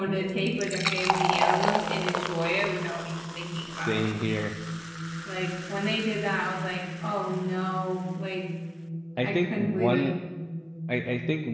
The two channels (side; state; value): both; identical; correlation 1.00